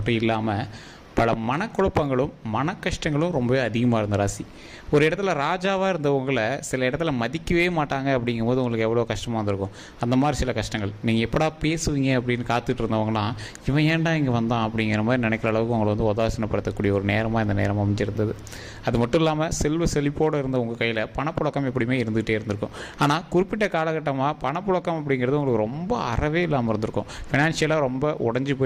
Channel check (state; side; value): identical; both; correlation 1.00